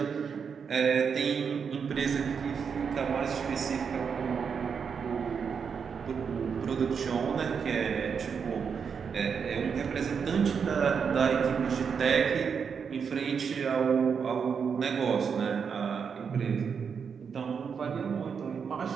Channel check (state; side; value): quieter; left; 6.4 dB